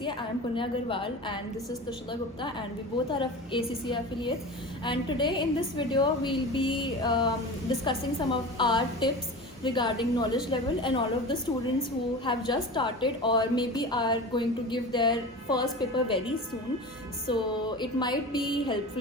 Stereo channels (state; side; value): normal; both; correlation 0.32